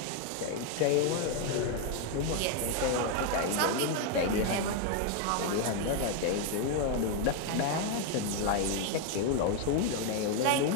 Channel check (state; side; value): different; both; correlation 0.01